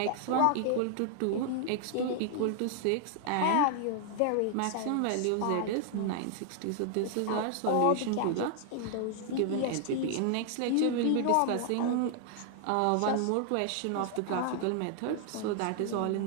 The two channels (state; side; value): different; both; correlation 0.00